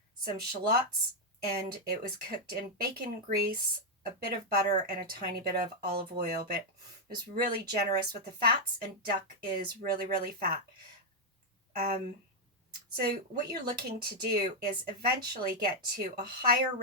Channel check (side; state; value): both; normal; correlation -0.01